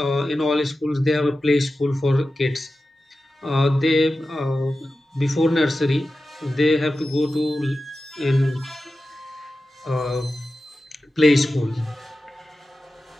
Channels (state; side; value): normal; both; correlation 0.93